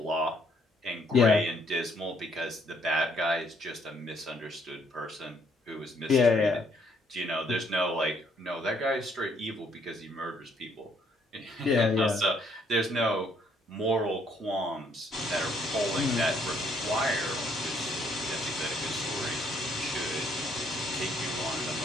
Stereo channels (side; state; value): both; normal; correlation 0.68